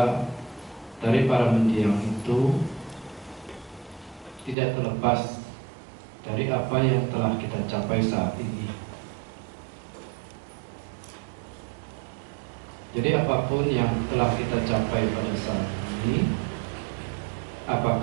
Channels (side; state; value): left; drops out; at 4.5 s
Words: dari para mendiang itu tidak terlepas dari apa yang telah kita capai saat ini. Jadi apapun yang telah kita capai pada saat ini,